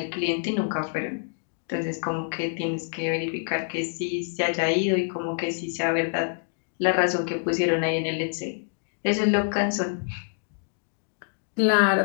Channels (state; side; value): silent; right; digital silence